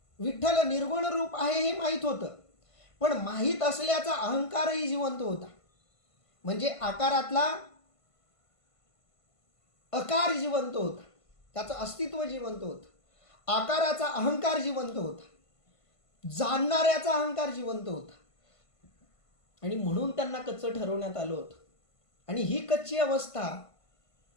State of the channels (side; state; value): right; late; 1.5 ms